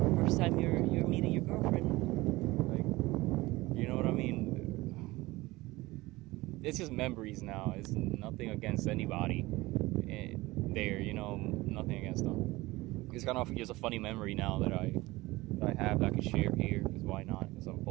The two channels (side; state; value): left; quieter; 20.1 dB